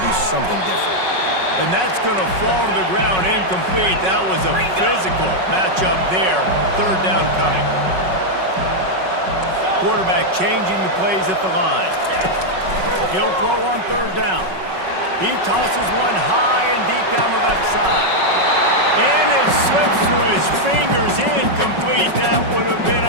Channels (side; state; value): left; late; 5.4 ms